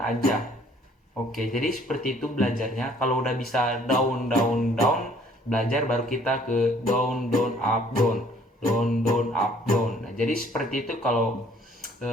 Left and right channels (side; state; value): both; normal; correlation 0.59